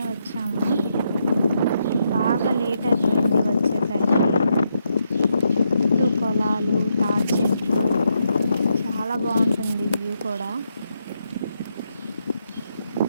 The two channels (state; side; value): inverted; both; correlation -0.80